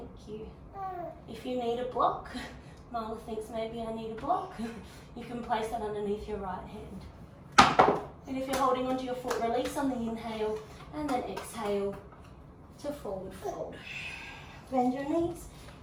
you. If you need a block, Mala thinks maybe I need a block, you can place that underneath your right hand. And if you're holding onto your foot, release on the inhale and then exhale to forward fold. Bend your knees.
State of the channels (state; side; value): identical; both; correlation 1.00